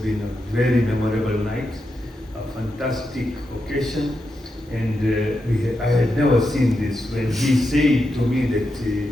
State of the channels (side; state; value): both; normal; correlation 0.86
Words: a very memorable night, a fantastic occasion. And I had never seen this. When he said to me that